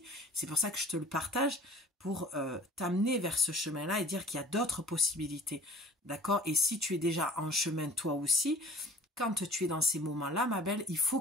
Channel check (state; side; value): normal; both; correlation 0.46